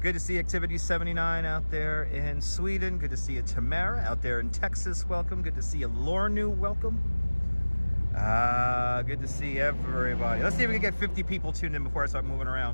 Good to see Activity 79 out there in Sweden. Good to see you, Tamara, out there in Texas. Welcome. Good to see you, Lornu. Welcome. Good to see everybody. Let's see if we can get 50 people tuned in before I start moving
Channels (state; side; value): inverted; both; correlation -1.00